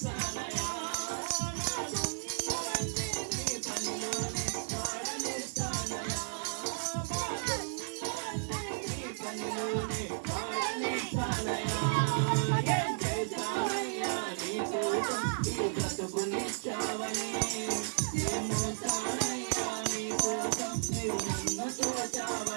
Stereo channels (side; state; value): left; silent; digital silence